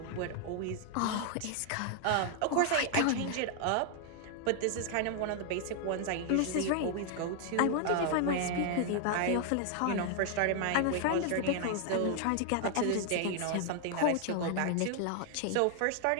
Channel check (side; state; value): both; different; correlation 0.00